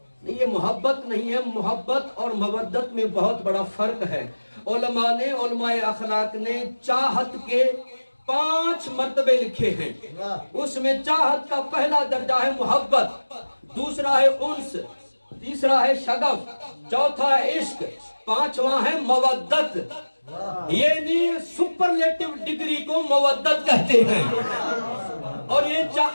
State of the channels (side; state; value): both; inverted; correlation -1.00